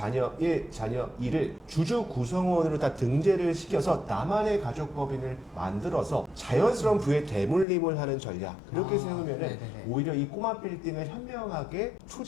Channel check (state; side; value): drops out; right; at 7.7 s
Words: 1, 자녀 2를 주주 구성원으로 다 등재를 시켜서 나만의 가족법인을 만들어서 자연스러운 부의 대물림을 하는 전략, 그렇게 세우면은 오히려 이 꼬마 빌딩을 현명하게